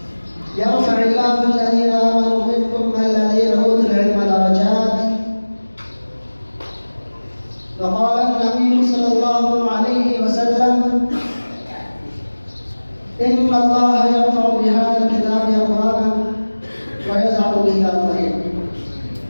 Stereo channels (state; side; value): inverted; both; correlation -1.00